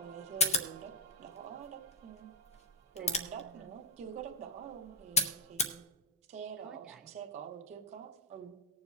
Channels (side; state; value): both; normal; correlation 0.02